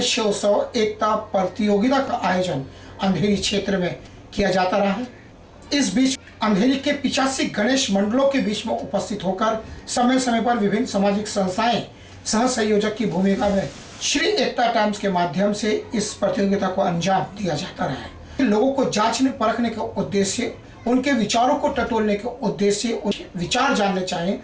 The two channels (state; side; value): identical; both; correlation 1.00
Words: एकता प्रतियोगिता का आयोजन अंधेरी क्षेत्र में किया जाता रहा है। इस बीच अंधेरी के 85 गणेश मंडलों के बीच में उपस्थित होकर समय समय पर विभिन्न सामाजिक संस्थाएं सह संयोजक की भूमिका में श्री एकता टाइम्स के माध्यम से इस प्रतियोगिता को अंजाम दिया जाता रहा है। लोगों को जांचने परखने के उद्देश्य, उनके विचारों को टटोलने के उद्देश्य, उनके विचार जानने चाहिए